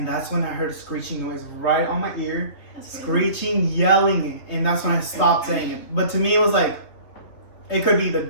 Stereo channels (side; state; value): right; late; 3.4 ms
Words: that's when I heard a screeching noise right on my ear. That's Screeching, yelling, and that's when I stopped saying it. But to me, it was like, it could be the